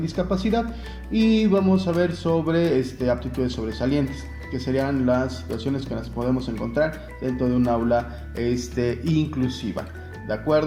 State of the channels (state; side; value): identical; both; correlation 1.00